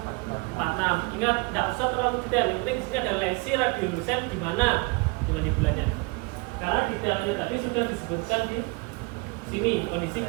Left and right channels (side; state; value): left; quieter; 28.2 dB